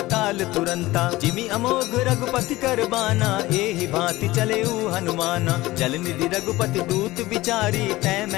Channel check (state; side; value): quieter; right; 18.5 dB